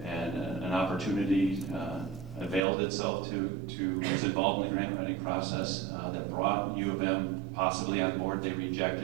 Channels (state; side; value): drops out; left; at 2.6 s